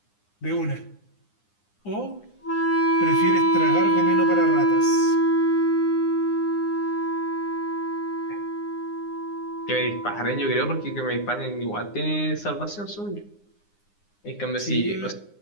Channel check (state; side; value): late; right; 9.8 ms